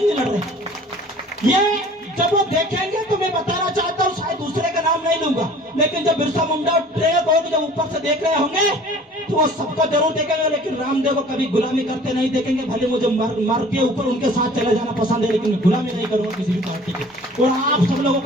नहीं लड़ रहे। ये जब वो देखेंगे तो मैं बताना चाहता हूँ, शायद दूसरे का नाम नहीं लूंगा, लेकिन जब बिरसा मुंडा और ट्रेक होगी, जब ऊपर से देख रहे होंगे तो वो सबको जरूर देखेंगे, लेकिन रामदेव को कभी गुलामी करते नहीं देखेंगे। भले मुझे मर के ऊपर उनके साथ चले जाना पसंद है, लेकिन मैं गुलामी नहीं करूंगा किसी भी पार्टी की। और आप सब लोगों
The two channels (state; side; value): normal; both; correlation 0.48